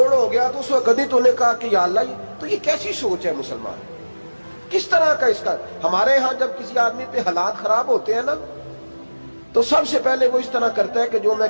ہو گیا، تو اس وقت کبھی تو نے کہا کہ یا اللہ، تو یہ کیسی سوچ ہے مسلمان؟ کس طرح کا اس کا؟ ہمارے ہاں جب کسی آدمی پہ حالات خراب ہوتے ہیں نا تو سب سے پہلے وہ اس طرح کرتا ہے کہ جو میں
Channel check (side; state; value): both; inverted; correlation -1.00